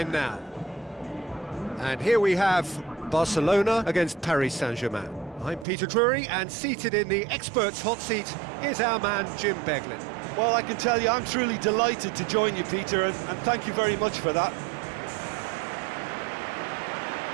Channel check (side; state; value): left; drops out; at 5.7 s